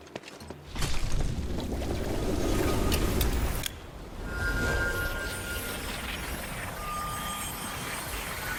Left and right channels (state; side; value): identical; both; correlation 1.00